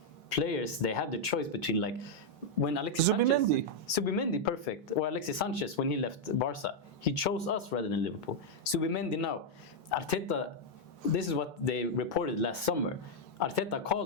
players, they have the choice between like when Alexis Subimendi, perfect, or Alexis Sanchez when he left Barca, he chose us rather than Liverpool. Subimendi now, Arteta, this is what they reported last summer. Arteta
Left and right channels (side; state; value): both; normal; correlation -0.02